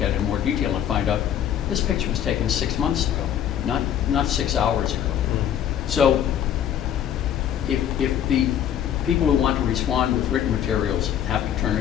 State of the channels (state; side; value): quieter; right; 10.0 dB